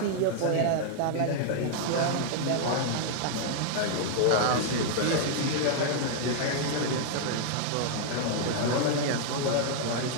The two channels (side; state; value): both; different; correlation 0.00